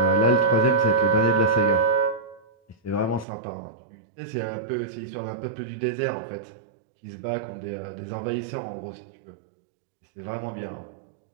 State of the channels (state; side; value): drops out; left; at 3.2 s